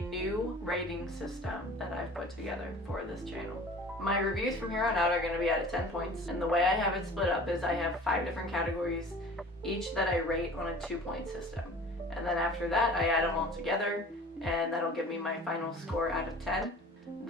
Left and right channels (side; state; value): both; normal; correlation 0.44